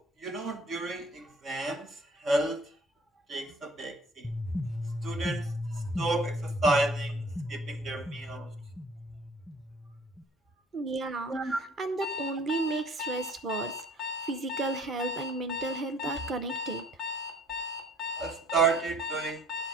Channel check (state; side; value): normal; both; correlation 0.55